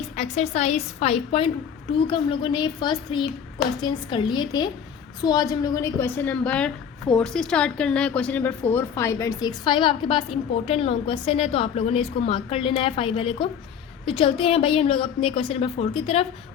एक्सरसाइज 5.2 का हम लोगों ने फर्स्ट 3 क्वेश्चंस कर लिए थे। सो आज हम लोगों ने क्वेश्चन नंबर 4 से स्टार्ट करना है। Question number 4, 5 and 6। 5 आपके पास इंपॉर्टेंट लॉन्ग क्वेश्चन है, तो आप लोगों ने इसको मार्क कर लेना है 5 वाले को। तो चलते हैं भाई हम लोग अपने क्वेश्चन नंबर 4 की तरफ,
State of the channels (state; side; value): quieter; right; 7.8 dB